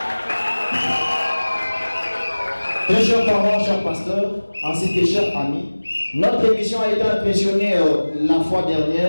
Très chers parents, chers pasteurs, ainsi que chers amis, notre émission a été impressionnée la fois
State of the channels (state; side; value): inverted; both; correlation -1.00